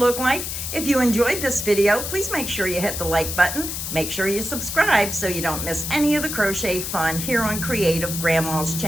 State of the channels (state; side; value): noise; left; hiss, 5 dB below the sound